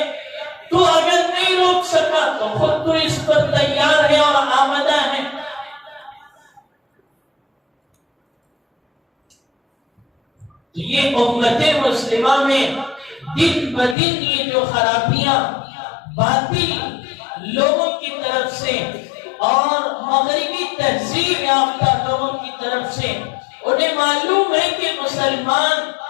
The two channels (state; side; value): drops out; right; at 14.0 s